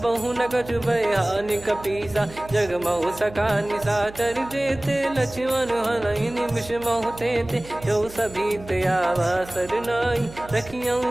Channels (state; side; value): noise; right; hum, 17 dB below the sound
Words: न कछु बयानि कपीसा। जग महु सका निशाचर जेते, लक्ष्मण हनहि निमिष महु तेते। जो सभी त्यावा सरनाई, रखियऊ